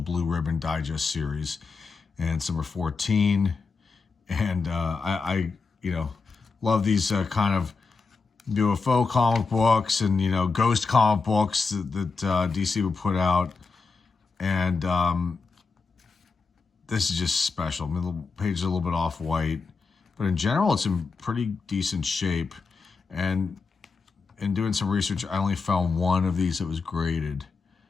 Ribbon Digest series. And it's number 14. And I love these kind of UFO comic books and, ghost comic books that DC would put out. And this is just special. I mean, the page is a little bit off-white. But in general, it's in pretty decent shape. And in doing some research, I only found one of these that was graded.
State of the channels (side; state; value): right; quieter; 4.5 dB